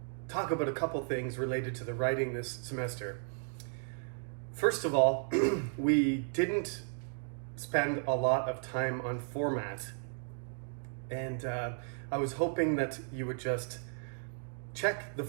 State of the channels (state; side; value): silent; left; digital silence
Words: talk about a couple things related to the writing this semester. First of all, we didn't spend a lot of time on format, and I was hoping that you would just check the